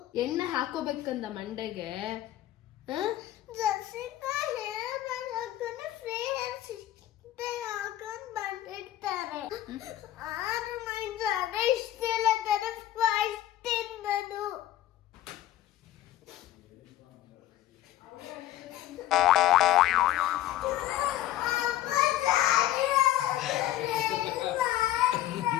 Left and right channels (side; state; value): right; quieter; 13.6 dB